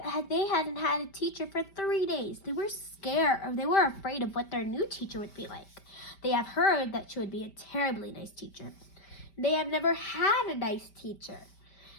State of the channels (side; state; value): right; late; 5.1 ms